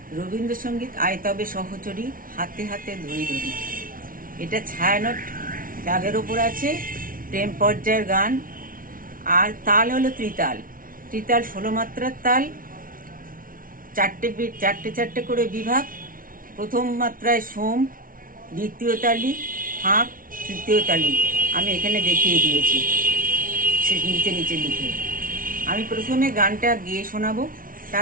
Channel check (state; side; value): late; left; 0.40 ms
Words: রবীন্দ্রসঙ্গীত আয় তবে সহচরী, হাতে হাতে ধরি ধরি। এটা ছায়ানট রাগের ওপর আছে, প্রেম পর্যায়ের গান। আর তাল হলো ত্রিতাল। ত্রিতাল ১৬ মাত্রার তাল, চারটে করে বিভাগ। প্রথম মাত্রায় সোম, দ্বিতীয় তালি ফাঁক, তৃতীয় তালি। আমি এখানে দেখিয়ে দিয়েছি সে নিচে নিচে লিখে। আমি প্রথমে গানটা গেয়ে শোনাবো,